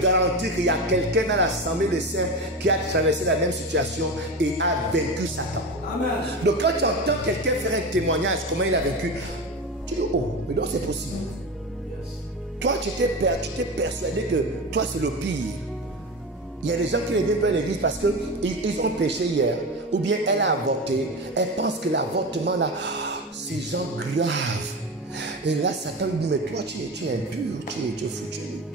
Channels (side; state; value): both; normal; correlation 0.24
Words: garantir qu'il y a quelqu'un dans l'assemblée des saints qui a traversé la même situation et a vaincu Satan. Amen. Donc quand tu entends quelqu'un faire un témoignage, comment il a vaincu, tu dis, oh, mais non, c'est possible. Yes. Toi, tu t'es persuadé que toi, c'est le pire. Il y a des gens qui ne viennent pas à l'église parce qu'ils ont péché hier. Ou bien elle a avorté. Elle pense que l'avortement là, c'est genre grave. Et là, Satan lui dit, mais toi, tu es impur, tu es foutu.